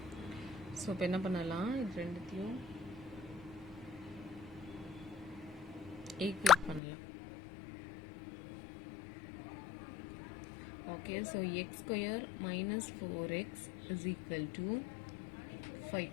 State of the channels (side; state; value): right; drops out; at 6.8 s